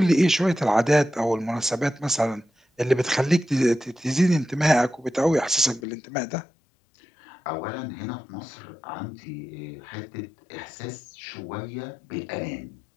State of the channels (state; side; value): drops out; right; at 5.9 s